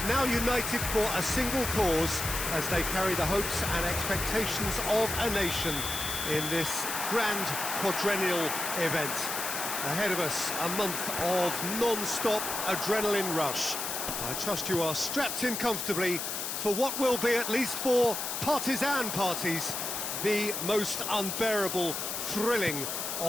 now united for a single cause as they carry the hopes and expectations of a nation in this grand quadrennial event. Ahead of us, a month of non-stop adrenaline rush. I trust you are strapped in comfortably for what will be, at least for partisan parties, the most unbearable, thrilling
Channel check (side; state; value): left; noise; hiss, 3 dB below the sound